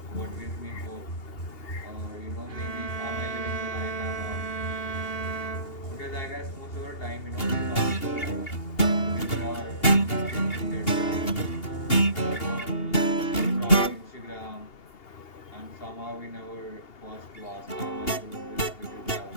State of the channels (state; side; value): late; right; 2.8 ms